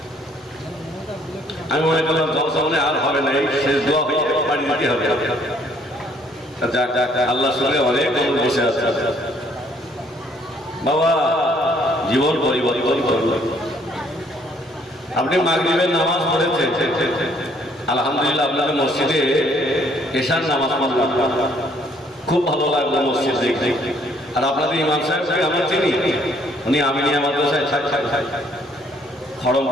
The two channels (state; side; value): normal; both; correlation 0.64